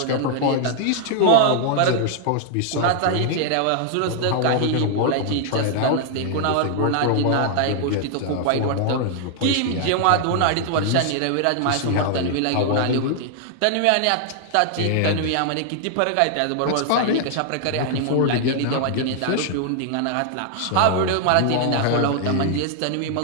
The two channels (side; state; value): both; different; correlation 0.00